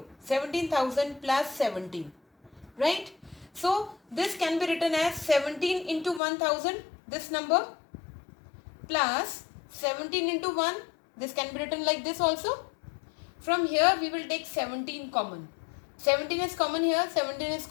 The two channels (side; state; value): right; drops out; at 6.2 s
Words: 17,000 plus 17. Right? So this can be written as 17 into 1000, this number, plus 17 into 1. This can be written like this also. From here we will take 17 common. 17 is common here, 17 is